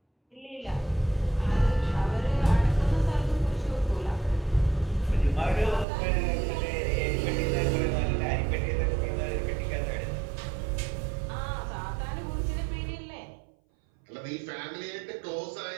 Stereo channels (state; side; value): drops out; left; at 5.9 s